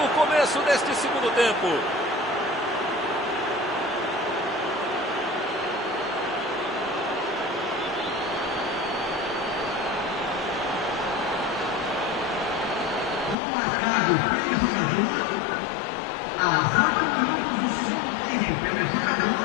o começo deste segundo tempo.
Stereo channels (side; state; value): right; drops out; at 13.4 s